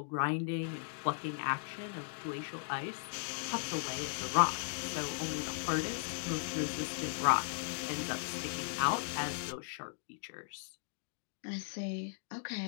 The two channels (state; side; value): silent; right; digital silence